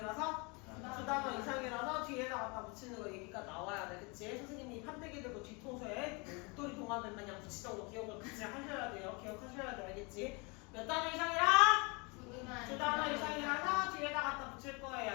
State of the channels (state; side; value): quieter; right; 29.9 dB